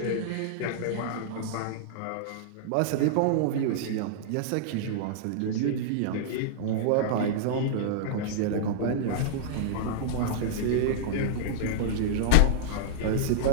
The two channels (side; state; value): both; different; correlation -0.02